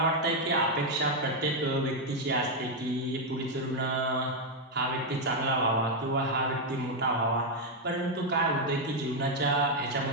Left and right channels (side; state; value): both; normal; correlation 0.02